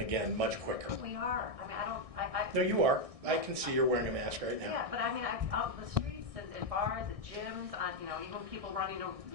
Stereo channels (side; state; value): left; late; 1.6 ms